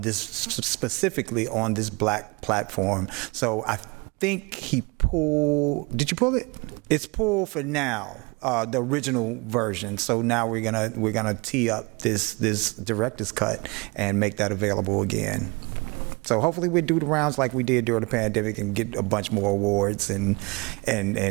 this, specifically on this black platform. So I think he pulled, did you pull it? It's pulled for now. The original version. So now we're gonna tee up this director's cut and make that available again. So hopefully we do the rounds like we did during the pandemic and get a bunch more awards and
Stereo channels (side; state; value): left; quieter; 27.6 dB